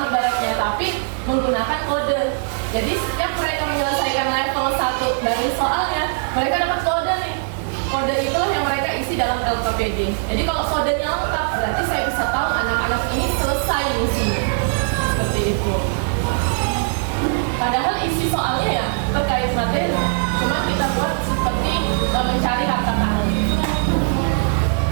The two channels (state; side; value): silent; left; digital silence